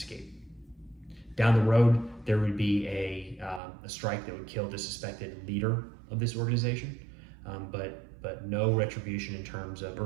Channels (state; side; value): drops out; left; at 3.6 s